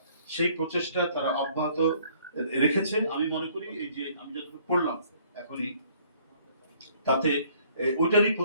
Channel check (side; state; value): both; inverted; correlation -0.61